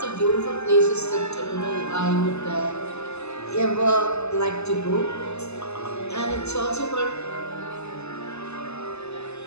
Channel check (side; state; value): right; late; 0.80 ms